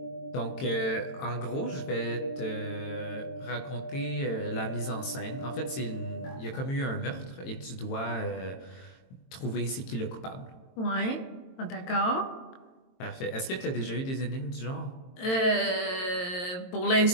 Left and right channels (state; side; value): late; right; 22 ms